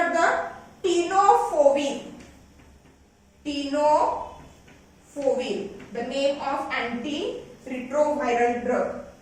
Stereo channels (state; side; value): identical; both; correlation 1.00